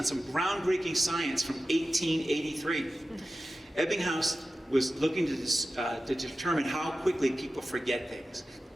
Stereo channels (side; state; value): both; normal; correlation 0.94